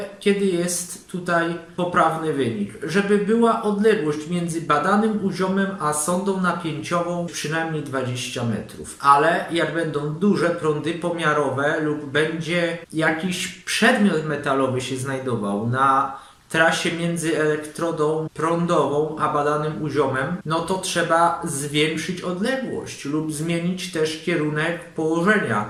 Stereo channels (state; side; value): identical; both; correlation 1.00